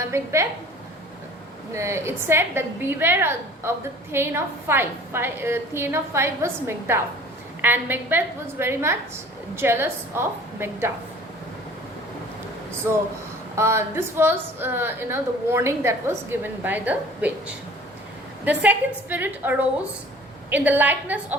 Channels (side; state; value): both; normal; correlation 0.48